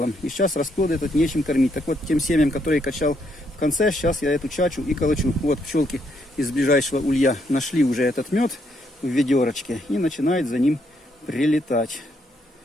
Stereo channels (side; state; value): both; normal; correlation 0.74